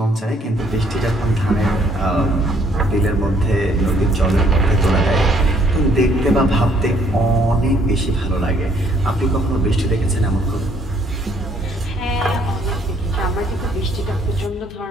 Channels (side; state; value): both; normal; correlation 0.65